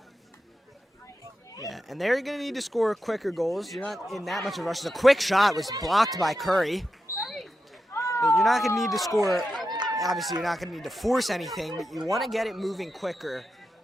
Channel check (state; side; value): normal; both; correlation 0.89